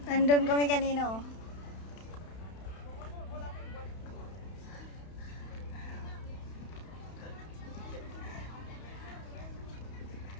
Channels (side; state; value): right; late; 31 ms